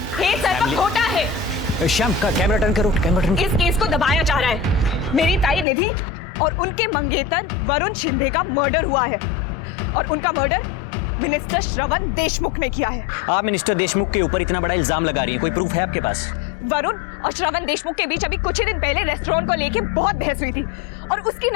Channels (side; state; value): right; drops out; at 5.7 s